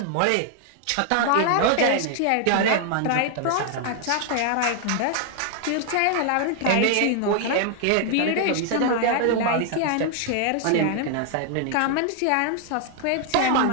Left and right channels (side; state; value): both; different; correlation 0.00